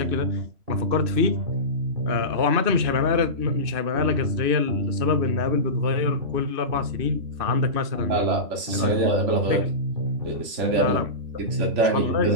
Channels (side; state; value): left; late; 2.6 ms